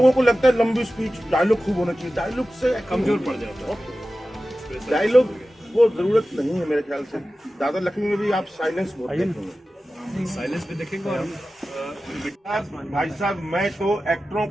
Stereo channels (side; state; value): both; normal; correlation 0.95